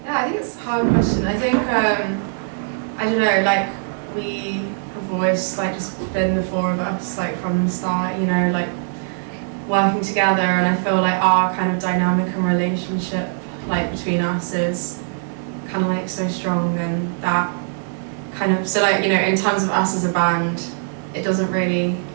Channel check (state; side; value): silent; left; digital silence